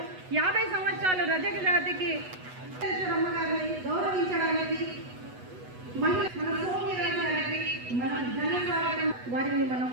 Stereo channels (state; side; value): late; left; 8.1 ms